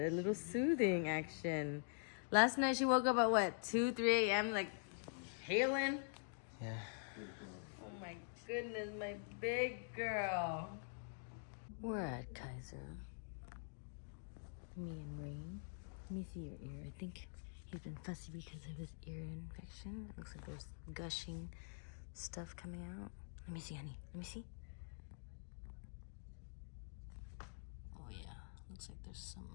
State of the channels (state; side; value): silent; right; digital silence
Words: little soothing action. Last night she woke up at what, 2, 3 a.m. like hailing? Yeah. Oh my goodness, my big girl. We're at Kaiser. Me and Rain. Let me see your ear. I think he's been fussy because of his ear infection. It looks like there's gushing stuff coming out. Let me see, honey. Let me see. Oh yeah, looks like there's